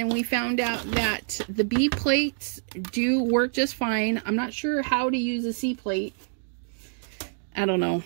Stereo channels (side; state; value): left; silent; digital silence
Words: we found out that the B plates do work just fine. I'm not sure how to use a C plate. I don't know.